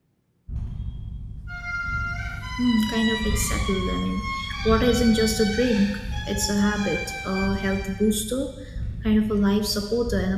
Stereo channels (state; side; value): identical; both; correlation 1.00